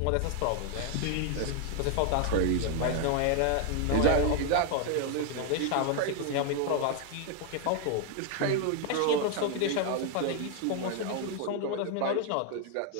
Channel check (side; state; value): both; different; correlation 0.00